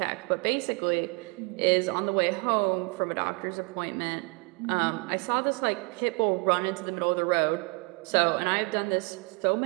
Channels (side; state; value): left; quieter; 31.0 dB